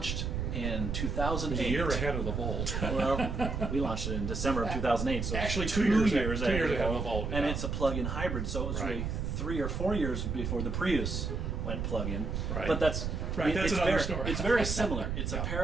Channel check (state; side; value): noise; right; rumble, 2 dB below the sound